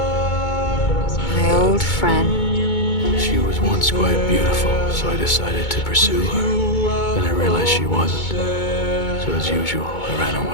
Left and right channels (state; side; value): late; right; 2.2 ms